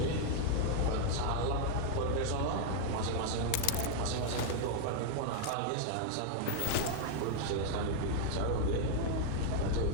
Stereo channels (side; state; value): both; different; correlation 0.00